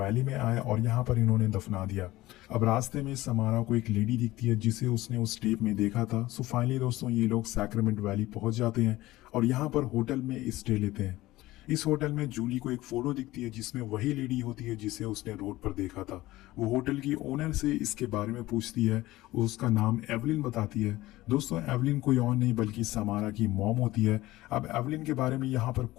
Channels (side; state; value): right; quieter; 17.6 dB